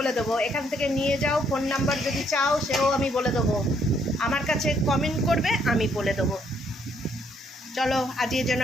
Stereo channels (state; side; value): normal; both; correlation 0.70